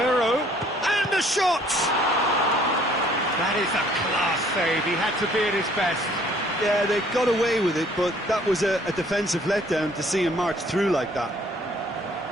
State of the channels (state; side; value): normal; both; correlation 0.59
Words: and the shot! That is a class save. He had to be at his best. Yeah, they got away with it, but that was a defensive letdown to see him march through like that.